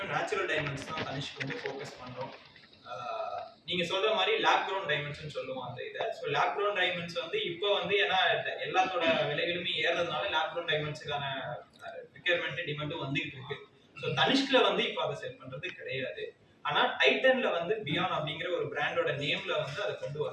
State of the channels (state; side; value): identical; both; correlation 1.00